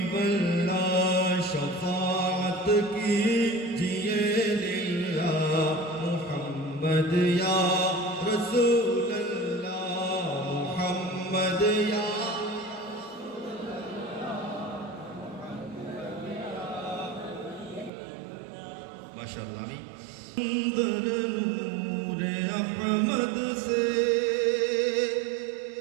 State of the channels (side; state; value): left; drops out; at 17.9 s